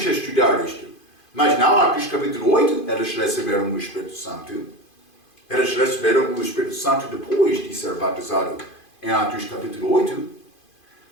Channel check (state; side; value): late; right; 2.5 ms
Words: estudar isto. Mas não, Atos capítulo 8, eles receberam o Espírito Santo. Eles receberam o Espírito Santo depois de ser batizado em Atos capítulo 8.